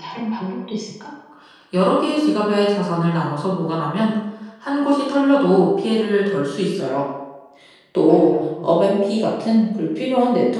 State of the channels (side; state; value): both; identical; correlation 1.00